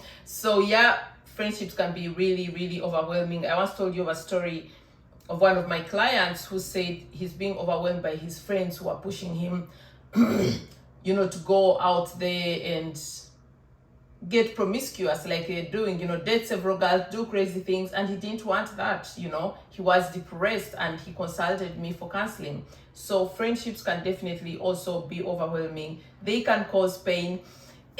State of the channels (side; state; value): both; identical; correlation 1.00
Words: So yeah, friendships can be really overwhelming. I once told you of a story of one of my clients who said he's being overwhelmed by his friends who are pushing him you know, to go out there and get promiscuous like they're doing, you know, date several girls, do crazy things, and he didn't want that, you know. He was depressed and he consulted me for counseling. So friendships can definitely also be overwhelming. They can cause pain,